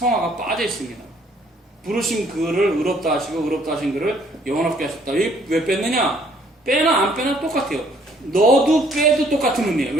빠져 있습니다. 부르신 그를 의롭다 하시고 의롭다 하신 그를 영화롭게 하셨다. 왜 뺐느냐? 빼나 안 빼나 똑같아요. 넣어도 빼도 똑같은 의미예요.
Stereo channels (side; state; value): both; normal; correlation 0.62